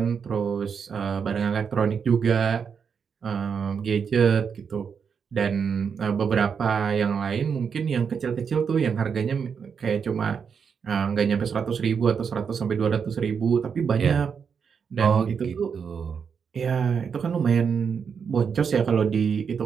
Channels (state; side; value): quieter; left; 6.5 dB